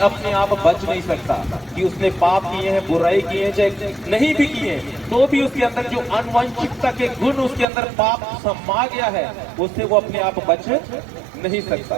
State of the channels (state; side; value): drops out; left; at 7.7 s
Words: अपने आप बच नहीं सकता कि उसने पाप किए हैं, बुराई की है, चाहे नहीं भी किए, तो भी उसके अंदर जो अनुवांशिकता के गुण उसके अंदर पाप समा गया है, उससे वो अपने आप बच नहीं